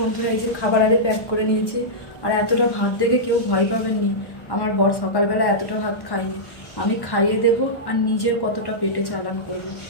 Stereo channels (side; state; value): right; late; 1.1 ms